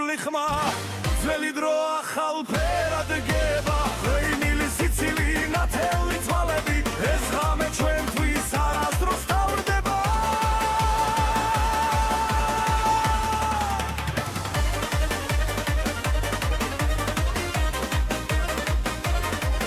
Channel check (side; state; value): both; identical; correlation 1.00